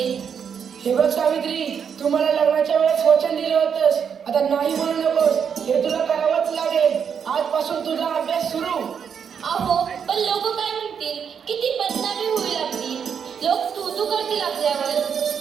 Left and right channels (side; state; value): left; quieter; 7.2 dB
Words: हे बघ सावित्री, तू मला लग्नाच्या वेळेस वचन दिलं होतंस, आता नाही म्हणू नकोस. हे तुला करावंच लागेल. आजपासून तुझा अभ्यास सुरू. अहो, पण लोक काय म्हणतील? किती बदनामी होईल आपली. लोक तू करतील आपल्यावर.